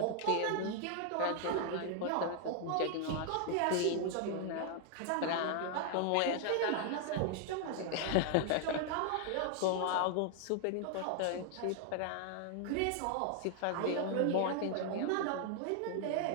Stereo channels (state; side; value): different; both; correlation 0.00